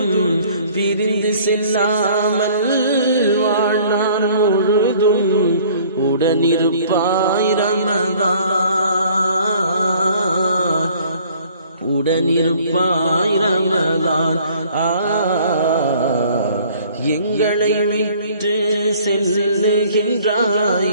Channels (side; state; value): both; inverted; correlation -0.55